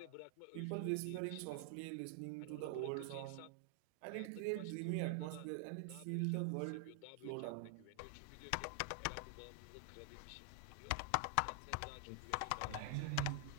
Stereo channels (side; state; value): both; different; correlation 0.00